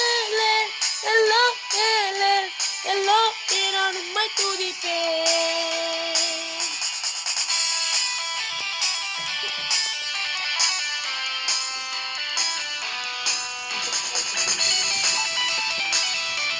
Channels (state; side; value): identical; both; correlation 1.00